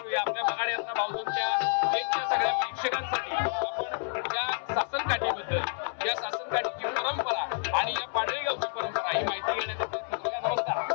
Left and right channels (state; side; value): silent; right; 58 dB below the other